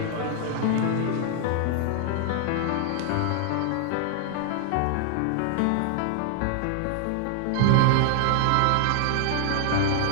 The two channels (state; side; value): different; both; correlation 0.00